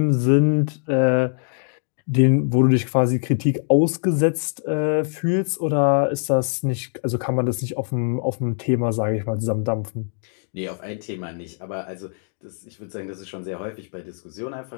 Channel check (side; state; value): right; silent; digital silence